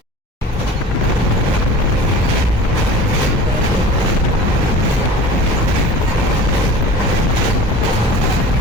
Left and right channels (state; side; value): normal; both; correlation 0.40